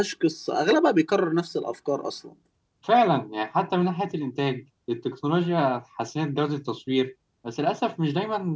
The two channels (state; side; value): identical; both; correlation 1.00